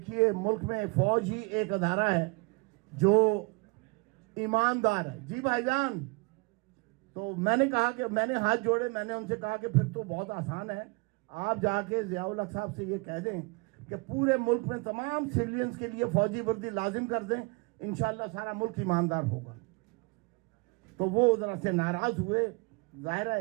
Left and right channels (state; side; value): quieter; left; 29.0 dB